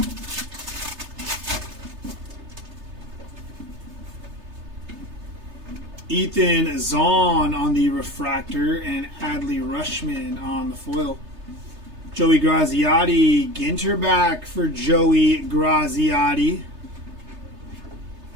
Ethan Zahn on the refractor and Adley Rushman on the foil. Joey Graziotti, Ginter back for Joey Graziotti.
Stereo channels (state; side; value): late; left; 3.3 ms